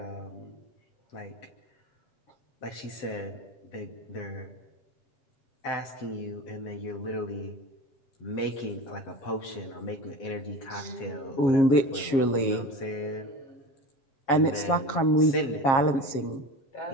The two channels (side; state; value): right; late; 7.4 ms